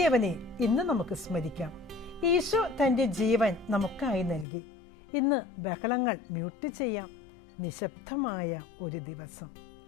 ഇന്ന് നമുക്ക് സ്മരിക്കാം. ഈശോ തൻ്റെ ജീവൻ നമുക്കായി നൽകി. ഇന്ന് ബഹളങ്ങൾ മ്യൂട്ട് ചെയ്യാം. നിശബ്ദമായ ഒരു ദിവസം.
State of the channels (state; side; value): drops out; right; at 4.5 s